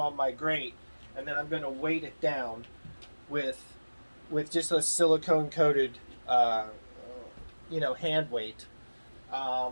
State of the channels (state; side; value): inverted; both; correlation -1.00